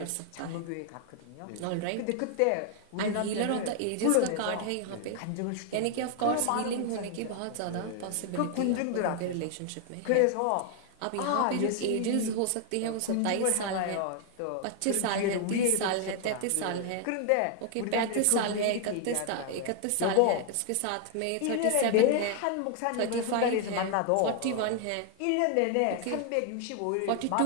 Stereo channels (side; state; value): both; different; correlation 0.00